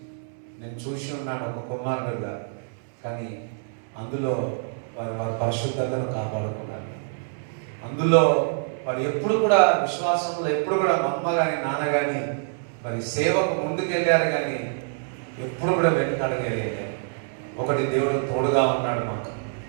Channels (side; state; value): left; silent; 61 dB below the other